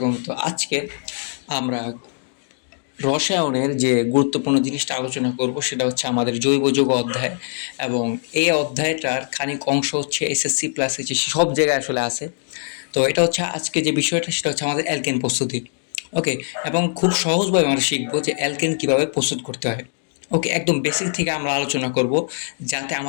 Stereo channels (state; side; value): silent; right; digital silence